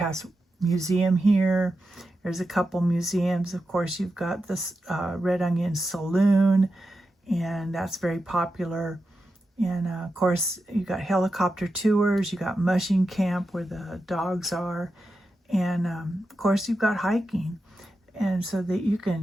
Museum here. There's a couple museums. Of course, you've got this Red Onion Saloon, and that's very popular. And of course, you got helicopter tours. You got mushing camp where the dogs are. And of course, you've got hiking. And so that you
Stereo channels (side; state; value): both; normal; correlation 0.89